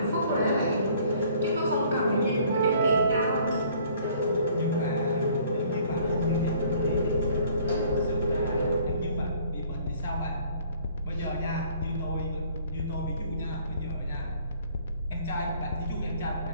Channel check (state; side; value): inverted; both; correlation -0.57